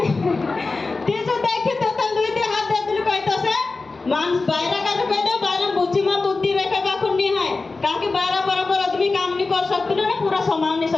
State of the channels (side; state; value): right; quieter; 3.8 dB